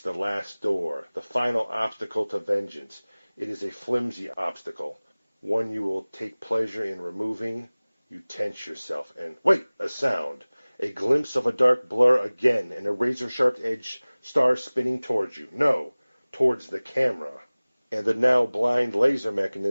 the last door, the final obstacle to vengeance. It is a flimsy obstacle, one you will take pleasure in removing. You tense yourself and... Wait! A sound. A glimpse of a dark blur again, and a razor-sharp edge star spinning towards you. No, towards the camera. And the now blind laser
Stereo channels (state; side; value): inverted; both; correlation -1.00